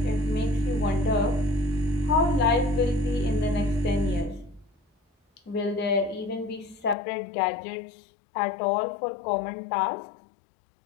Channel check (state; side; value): drops out; right; at 7.0 s